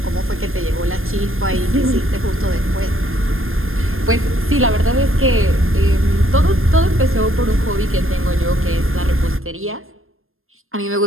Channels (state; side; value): late; left; 0.60 ms